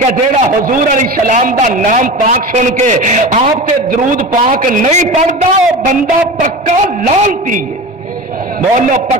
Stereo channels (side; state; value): both; normal; correlation 0.30